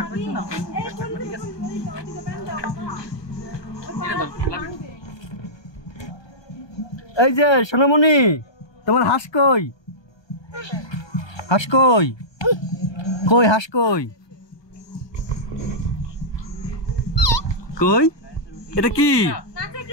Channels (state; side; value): late; right; 1.2 ms